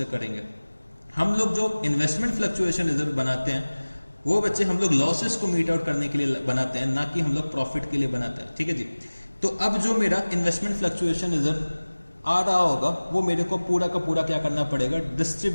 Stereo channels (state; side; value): inverted; both; correlation -1.00